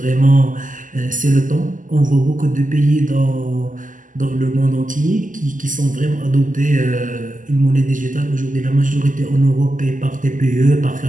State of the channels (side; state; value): left; late; 0.38 ms